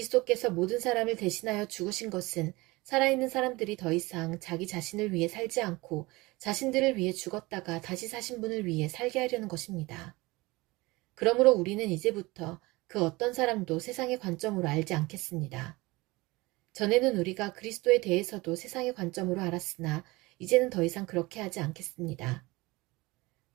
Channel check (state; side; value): quieter; left; 22.2 dB